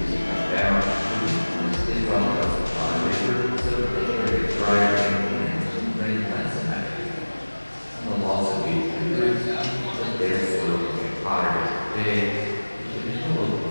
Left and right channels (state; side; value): inverted; both; correlation -1.00